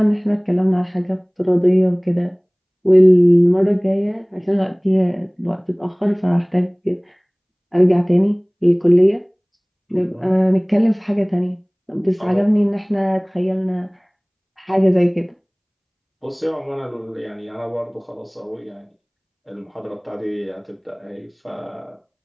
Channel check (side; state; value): both; identical; correlation 1.00